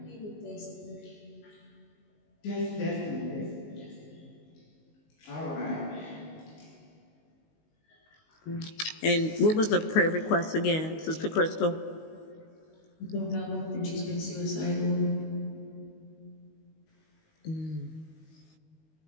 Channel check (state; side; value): late; right; 19 ms